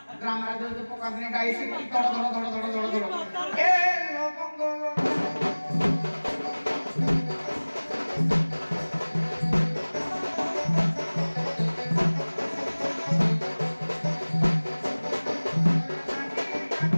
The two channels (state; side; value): inverted; both; correlation -1.00